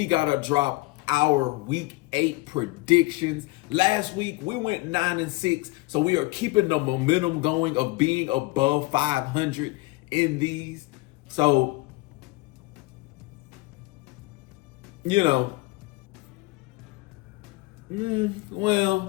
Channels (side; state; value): right; quieter; 22.1 dB